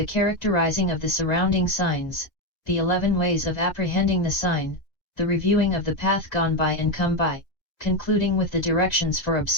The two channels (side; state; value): right; late; 2.0 ms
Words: characterizing of the surrounding signs, the 11 ways of apprehending the sign, the reviewing of the path gone by and come by, concluding with the directions for